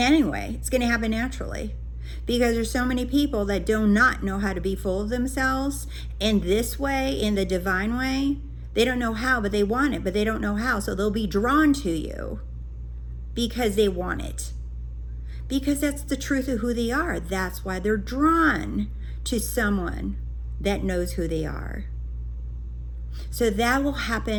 It's going to happen naturally, because there's so many people that do not know how to be full of themselves in this way, in the divine way. They don't know how, but they want it, but they don't know how. So they'll be drawn to you because they want it. Because that's the truth of who they are. That's why they're drawn to someone that knows who they are. So that will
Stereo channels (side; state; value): both; identical; correlation 1.00